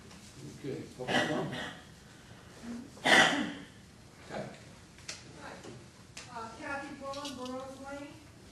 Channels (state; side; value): identical; both; correlation 1.00